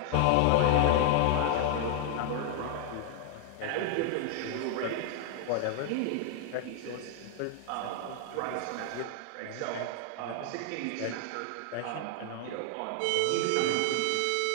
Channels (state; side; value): different; both; correlation 0.00